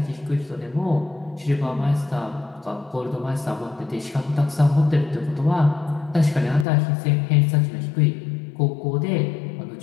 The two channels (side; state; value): right; drops out; at 6.7 s